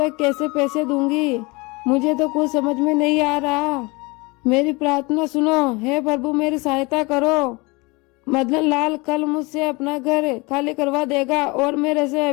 कैसे पैसे दूंगी, मुझे तो कुछ समझ में नहीं आ रहा, मेरी प्रार्थना सुनो, हे प्रभु मेरी सहायता करो। मदन लाल कल मुझसे अपना घर खाली करवा देगा और मेरे से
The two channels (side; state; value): right; quieter; 26.1 dB